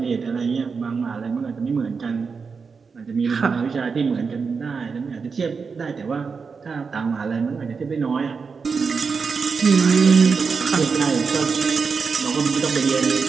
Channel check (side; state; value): left; quieter; 5.3 dB